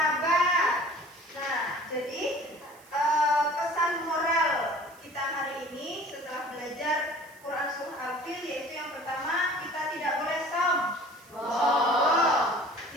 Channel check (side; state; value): right; noise; hiss, 25 dB below the sound